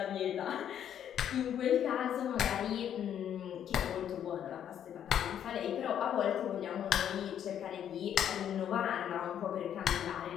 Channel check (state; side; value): quieter; right; 9.7 dB